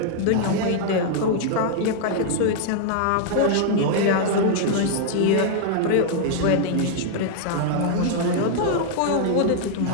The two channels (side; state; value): both; different; correlation -0.01